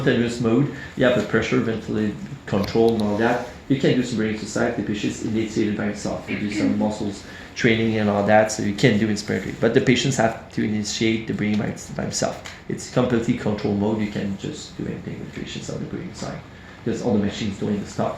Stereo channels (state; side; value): identical; both; correlation 1.00